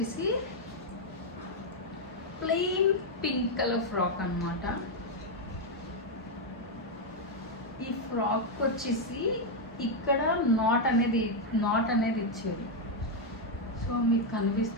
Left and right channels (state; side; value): normal; both; correlation 0.01